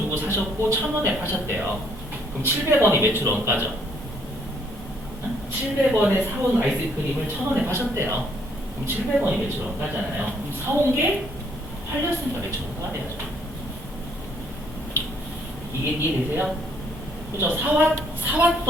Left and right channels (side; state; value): both; normal; correlation 0.67